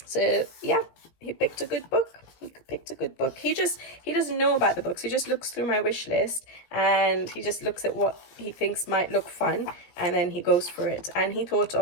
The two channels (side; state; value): right; late; 17 ms